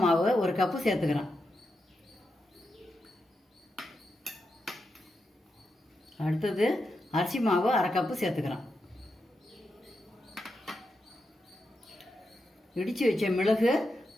மாவு 1 கப்பு சேர்த்துக்கிறேன். அடுத்தது அரிசி மாவு அரை கப்பு சேர்த்துக்கிறேன். இடித்து வச்ச மிளகு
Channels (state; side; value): normal; both; correlation 0.86